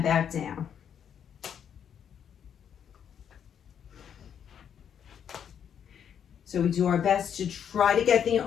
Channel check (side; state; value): right; quieter; 8.4 dB